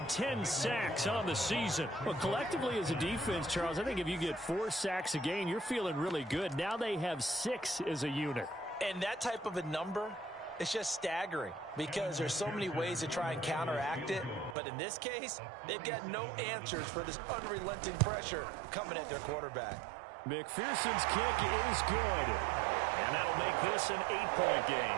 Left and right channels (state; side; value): drops out; left; at 14.6 s